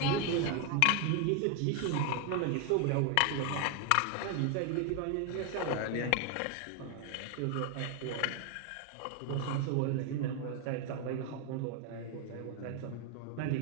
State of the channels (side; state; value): both; different; correlation 0.01